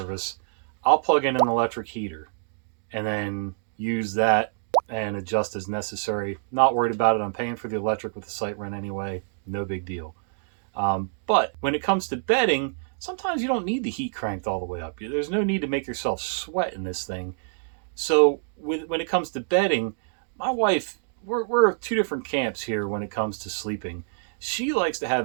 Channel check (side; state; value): left; silent; digital silence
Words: I'll plug in an electric heater and then use that and adjust as necessary. Not worried about it. I'm paying for the electric with the site rent anyway. No big deal. But when it comes to bedding, sometimes you don't need the heat cranked all the way up. There's no need to make yourself sweat in this thing. So when it comes to bedding, my wife, we're 2 different camps here when it comes to sleeping. She likes to